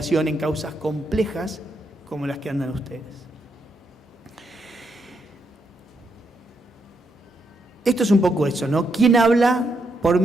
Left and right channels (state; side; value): normal; both; correlation 0.80